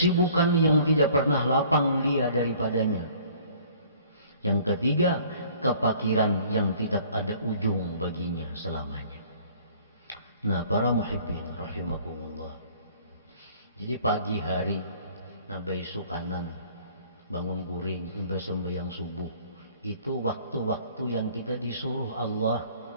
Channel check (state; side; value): inverted; both; correlation -0.54